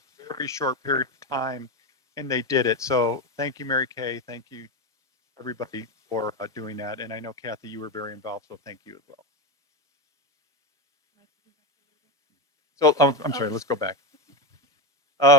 very short period of time, and they did it. So thank you, Mary Kay. Thank you, everybody, for doing that. And I know, Kathy, you were very involved, so thank you as well. So, I'm sorry, let's go back.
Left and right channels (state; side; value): normal; both; correlation 0.13